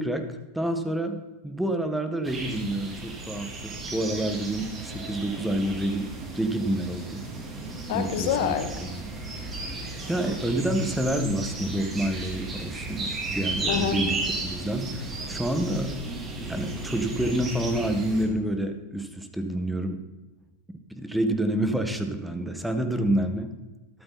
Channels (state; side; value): normal; both; correlation 0.57